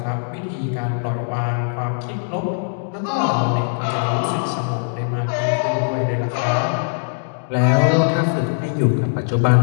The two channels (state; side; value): silent; right; digital silence